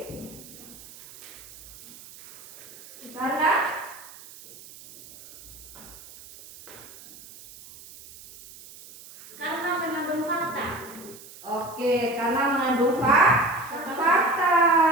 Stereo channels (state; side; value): noise; right; hiss, 19 dB below the sound